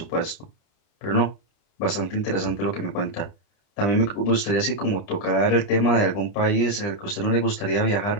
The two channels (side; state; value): right; late; 30 ms